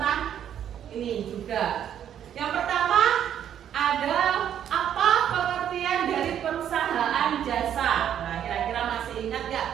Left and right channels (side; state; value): left; quieter; 9.8 dB